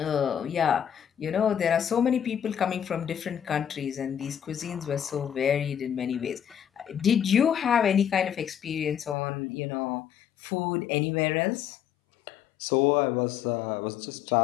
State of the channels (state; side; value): drops out; right; at 9.2 s